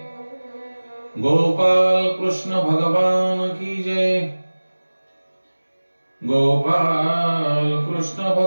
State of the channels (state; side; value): inverted; both; correlation -1.00